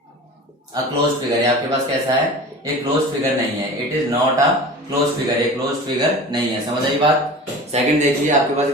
a closed figure. आपके पास कैसा है? ये क्लोज्ड फिगर नहीं है, it is not a closed figure, ये क्लोज्ड फिगर नहीं है। समझ आई बात? सेकंड देखिए आपके पास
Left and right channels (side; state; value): both; normal; correlation 0.36